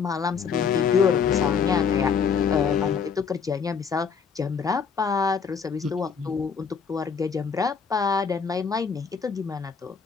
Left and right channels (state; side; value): quieter; right; 6.3 dB